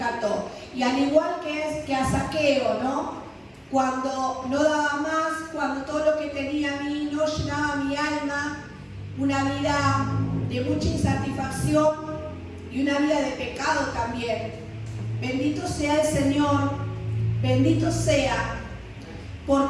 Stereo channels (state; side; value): identical; both; correlation 1.00